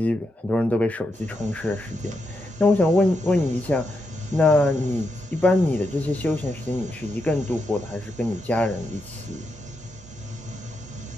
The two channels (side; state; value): both; normal; correlation 0.84